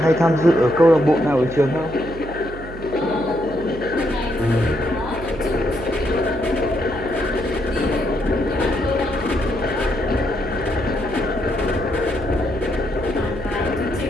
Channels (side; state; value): right; noise; hum, 13 dB below the sound